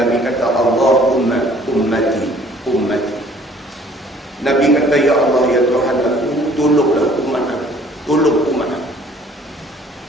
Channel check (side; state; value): both; normal; correlation 0.56